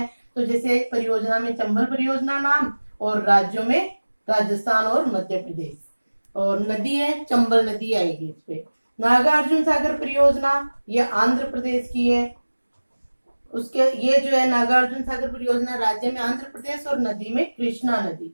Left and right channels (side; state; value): both; inverted; correlation -1.00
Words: तो जैसे परियोजना में चंबल परियोजना नाम और राज्यों में राजस्थान और मध्य प्रदेश, और नदी है चंबल नदी आएगी इस पे। नागार्जुन सागर परियोजना ये आंध्र प्रदेश की है। उसके ये जो है नागार्जुन सागर परियोजना राज्य में आंध्र प्रदेश और नदी में कृष्णा